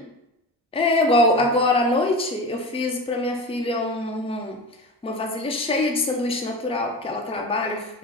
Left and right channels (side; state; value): both; normal; correlation 0.29